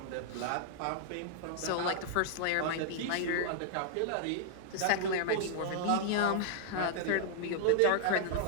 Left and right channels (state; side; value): different; both; correlation -0.01